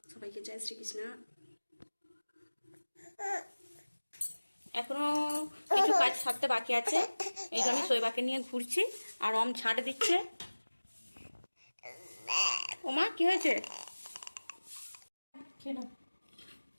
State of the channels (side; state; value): both; inverted; correlation -1.00